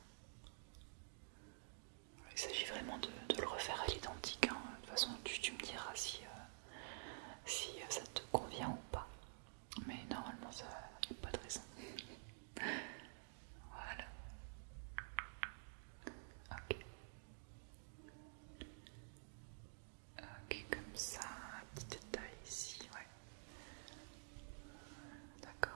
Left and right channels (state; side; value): silent; left; digital silence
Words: Il s'agit vraiment de le refaire à l'identique. Hein. De toute façon, tu me diras si, ça te convient ou pas. Mais normalement, ça n'y a pas de raison. Voilà. Ok. Ok, comme ça. Un petit détail ici, ouais.